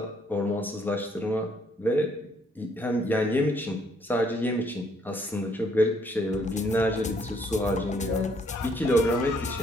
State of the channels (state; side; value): normal; both; correlation 0.67